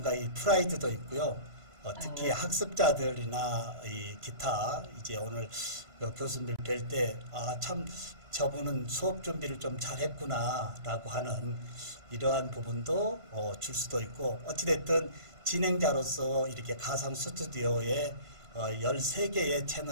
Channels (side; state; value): left; late; 3.0 ms